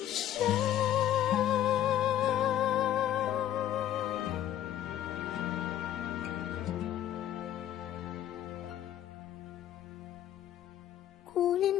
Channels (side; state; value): right; quieter; 11.7 dB